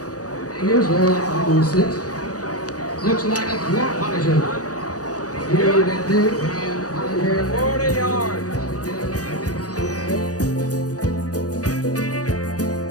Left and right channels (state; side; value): late; right; 0.67 ms